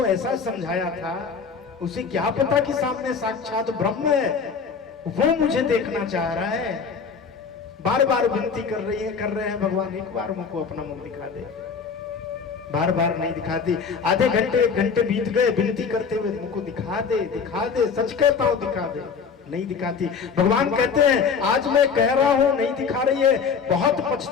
ऐसा समझाया था, उसे क्या पता कि सामने साक्षात ब्रह्म है, वो मुझे देखना चाह रहा है। बार बार विनती कर रहे हैं भगवान, एक बार मुझको अपना मुख दिखा दे। बार बार नहीं दिखाती। आधे घंटे एक घंटे बीत गए विनती करते हुए, मुझको दिखा दे, सच कहता हूं दिखा दे। नहीं दिखाती। भगवान कहते हैं आज मैं कह रहा हूं नहीं दिखा रही है, बहुत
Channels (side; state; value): right; quieter; 5.8 dB